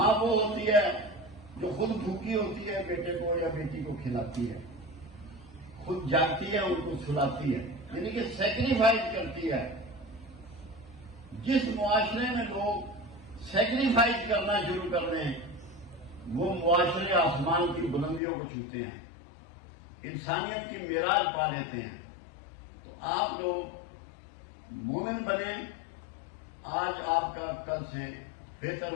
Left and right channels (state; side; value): drops out; right; at 18.2 s